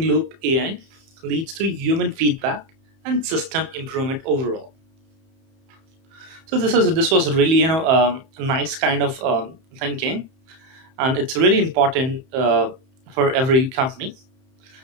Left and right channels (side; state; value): left; late; 30 ms